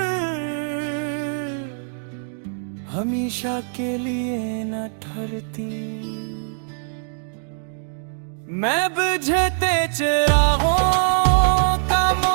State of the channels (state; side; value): silent; left; digital silence